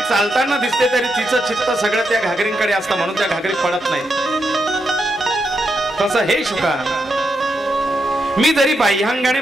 दिसते तरी तिचं चित्त सगळं त्या घागरींकडे असतं, म्हणून त्या घागरी पडत नाही. तसं हे शुका, मी जरी बाह्यांगाने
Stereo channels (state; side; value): normal; both; correlation 0.83